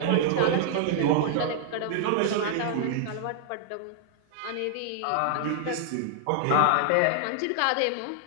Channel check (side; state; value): both; different; correlation -0.01